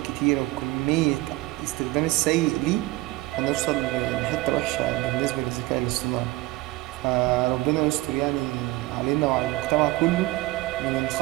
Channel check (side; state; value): left; quieter; 20.2 dB